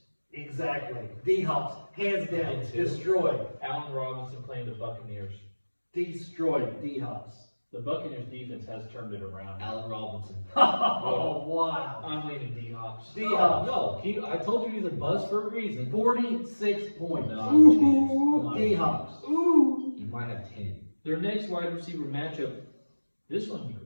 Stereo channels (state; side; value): inverted; both; correlation -1.00